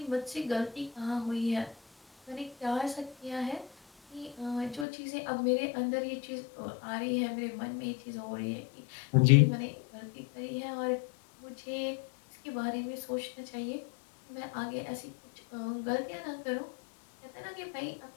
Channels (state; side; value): drops out; right; at 4.9 s